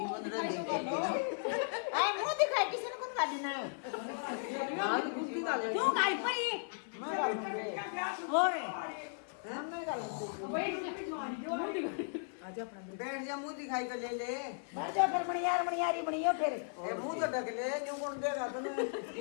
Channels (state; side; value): silent; right; 54 dB below the other